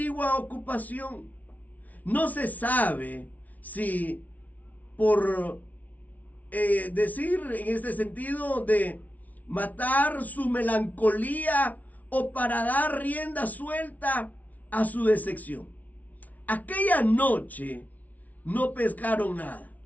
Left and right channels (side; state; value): right; late; 0.073 ms